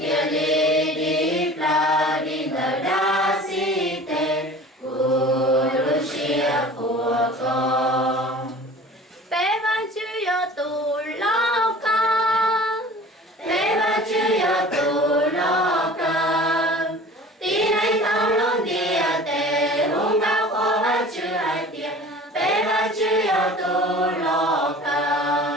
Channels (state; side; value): normal; both; correlation 0.43